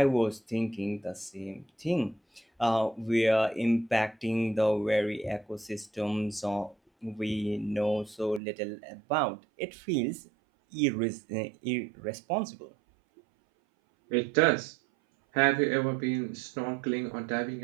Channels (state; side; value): drops out; left; at 8.4 s